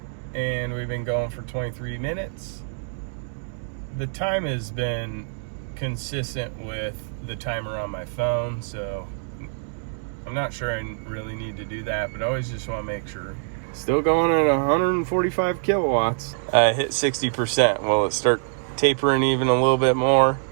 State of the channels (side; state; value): left; silent; digital silence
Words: And we've been going for 23 minutes. The time has been consistent with the timer on my phone, so I'm not sure I really need to do that, but I always just want to make sure. Still going at 145 kilowatts. I hit 60%. Will it start tapering even a little bit more?